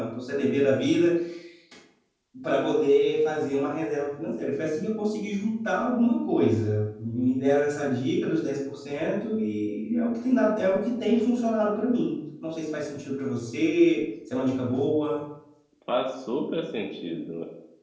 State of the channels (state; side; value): identical; both; correlation 1.00